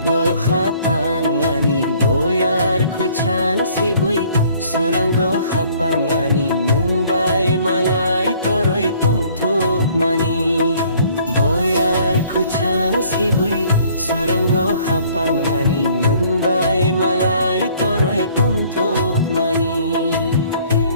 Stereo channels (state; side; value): inverted; both; correlation -0.58